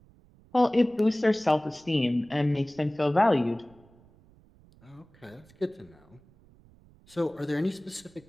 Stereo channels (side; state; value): right; noise; rumble, 28 dB below the sound